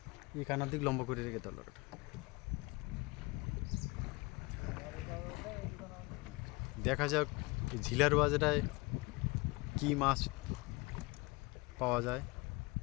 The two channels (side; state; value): right; quieter; 24.9 dB